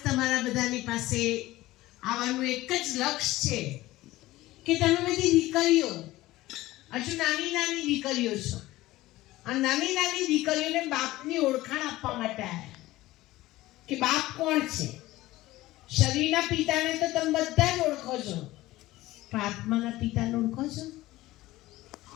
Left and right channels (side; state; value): right; quieter; 17.4 dB